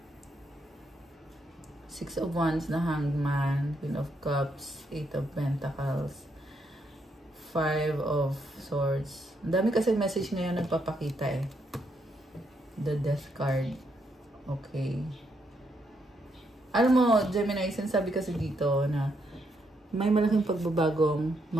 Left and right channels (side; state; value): both; normal; correlation 0.77